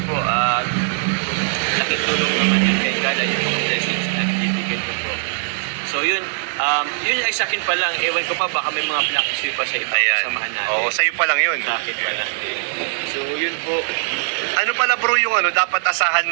po. Laking tulong naman yun kay Carla yung mga blessings na binibigay ko po. So yun. Yun ay sa akin pa lang. Ewan ko pa baka may mga pinakisuyo pa sa iba. Samahan natin. Oo, sa'yo pa lang yun. Sa akin pa lang. So yun po. Ano pala bro yung dapat asahan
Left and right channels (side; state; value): left; silent; digital silence